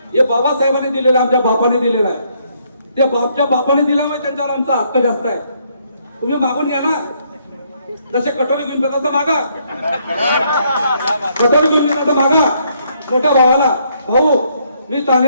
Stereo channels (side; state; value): both; inverted; correlation -0.70